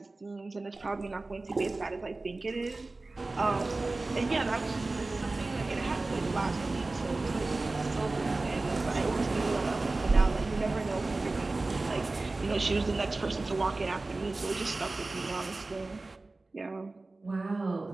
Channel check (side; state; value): left; quieter; 3.3 dB